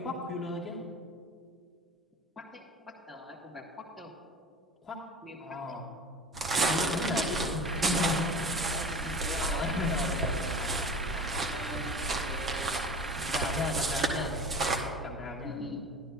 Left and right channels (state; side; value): normal; both; correlation 0.36